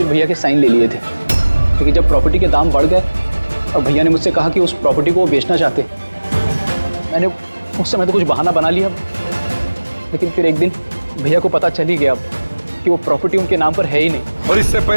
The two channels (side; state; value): both; inverted; correlation -1.00